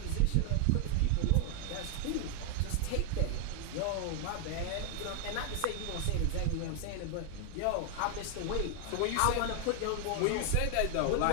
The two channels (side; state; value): both; different; correlation 0.00